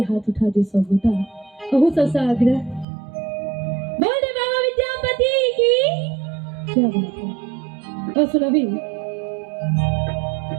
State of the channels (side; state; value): left; drops out; at 2.9 s